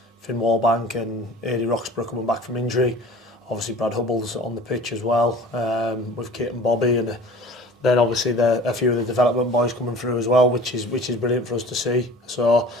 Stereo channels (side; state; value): both; normal; correlation 0.43